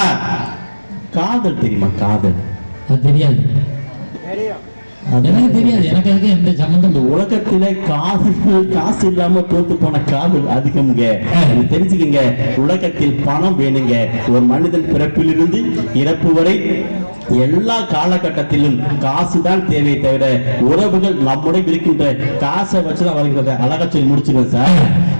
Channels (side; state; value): both; inverted; correlation -1.00